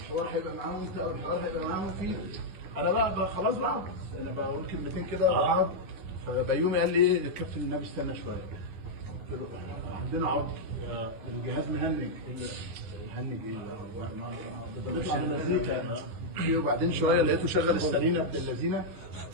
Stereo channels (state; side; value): late; left; 10 ms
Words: هيبقى معاهم انت او الحوار هيبقى معاهم فيه. انا بقى خلاص بقى انا بقول كلمتين كده وبقعد. فبيومي قال لي ايه الكابتن النبي استنى شويه. قلت له عندنا عطل. الجهاز مهنج. مهنج ايه؟ بيطلع بمزيكا. وبعدين شويه لقيته شغل السرينه ابن اللذينه